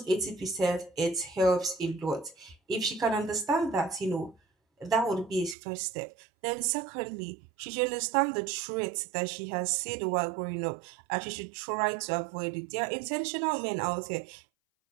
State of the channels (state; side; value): drops out; left; at 5.6 s